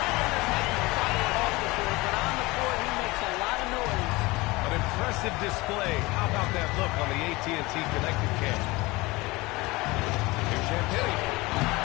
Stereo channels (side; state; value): right; quieter; 22.2 dB